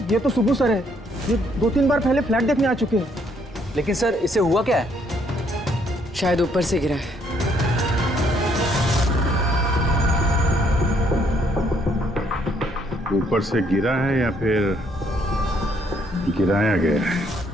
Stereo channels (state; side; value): normal; both; correlation 0.69